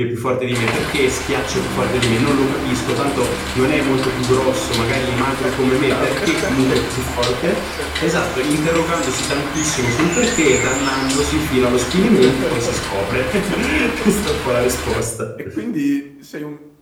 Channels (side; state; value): both; identical; correlation 1.00